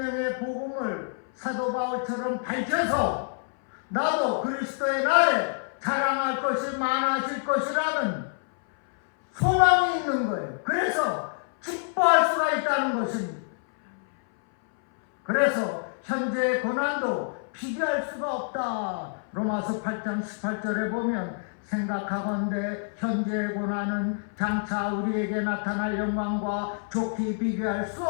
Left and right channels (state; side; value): silent; right; 59 dB below the other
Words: 복음을 사도 바울처럼 밝혀서 나도 그리스도의 날에 자랑할 것이 많아질 것이라는 소망이 있는 거예요. 그래서 기뻐할 수가 있다는 것입니다. 그래서 현재의 고난도 비교할 수가 없다. 로마서 8장 18절에 보면 생각하건대 현재의 고난은 장차 우리에게 나타날 영광과 좋게 비교할 수